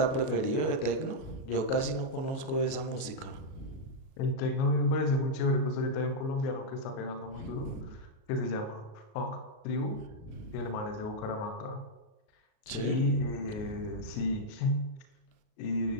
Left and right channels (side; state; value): right; late; 37 ms